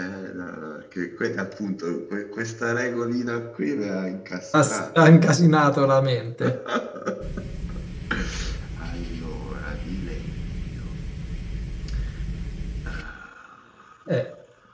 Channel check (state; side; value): identical; both; correlation 1.00